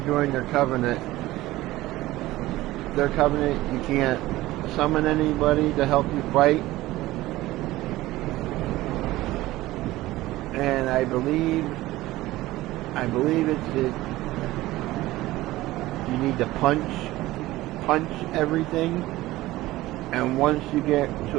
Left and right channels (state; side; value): quieter; left; 17.3 dB